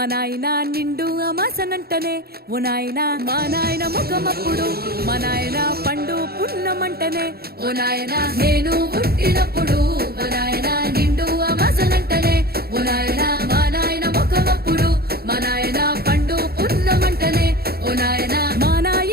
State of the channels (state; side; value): late; left; 0.45 ms